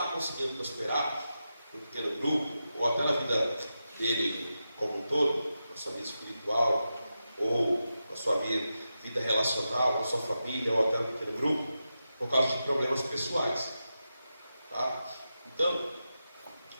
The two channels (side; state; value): both; inverted; correlation -0.90